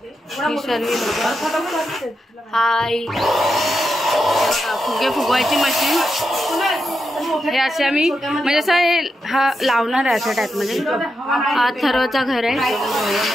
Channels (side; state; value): both; normal; correlation 0.86